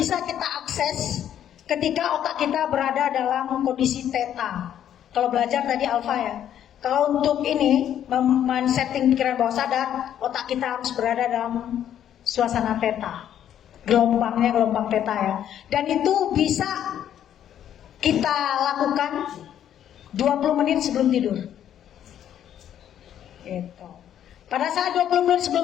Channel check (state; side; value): quieter; right; 10.3 dB